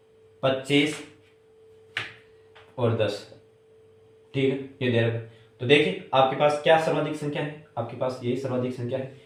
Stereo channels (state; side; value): identical; both; correlation 1.00